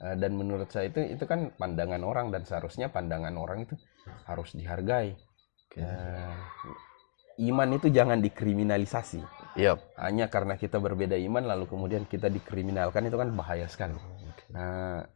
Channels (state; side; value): silent; right; digital silence